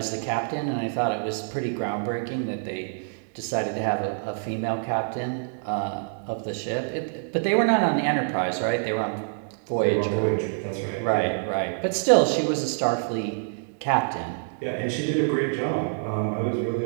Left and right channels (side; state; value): left; silent; digital silence